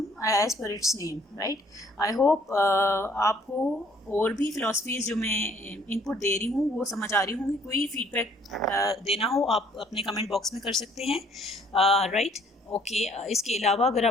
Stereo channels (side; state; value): both; normal; correlation 0.61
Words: as per its name, right. I hope आपको और भी फ़िलासफ़ीज़ जो मैं इनपुट दे रही हूँ वो समझ आ रही होंगी। कोई फीडबैक देना हो आप अपने कमेंट बॉक्स में कर सकते हैं, राइट। ओके, इसके अलावा अगर